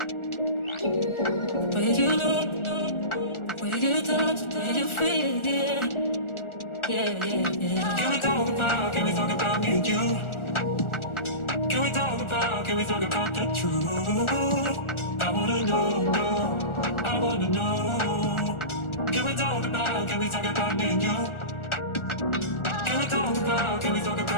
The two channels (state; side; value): late; right; 1.4 ms